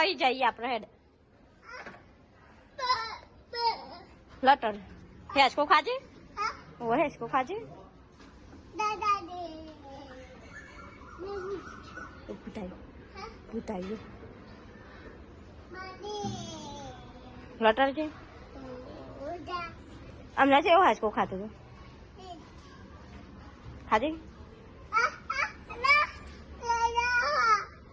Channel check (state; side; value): identical; both; correlation 1.00